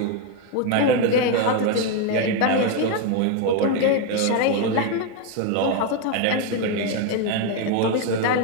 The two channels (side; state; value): both; different; correlation 0.02